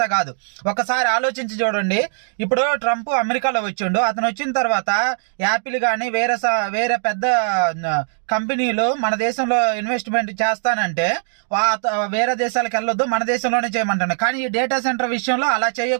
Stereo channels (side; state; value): left; silent; digital silence